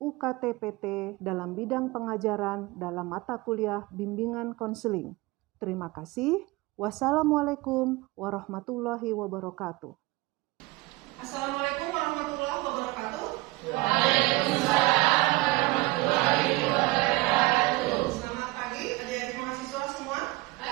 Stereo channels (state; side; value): quieter; left; 21.3 dB